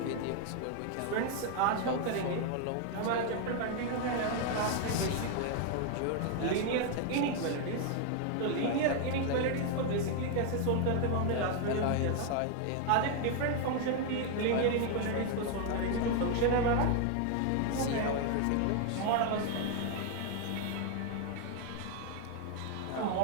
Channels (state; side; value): different; both; correlation 0.00